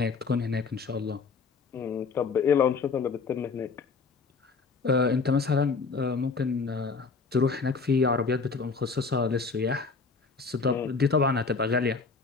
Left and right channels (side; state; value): right; quieter; 4.7 dB